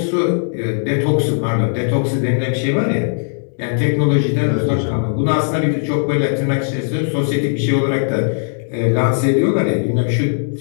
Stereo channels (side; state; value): right; silent; digital silence